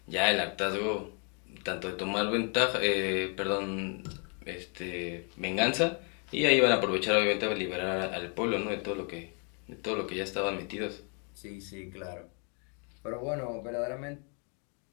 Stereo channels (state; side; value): quieter; right; 38.2 dB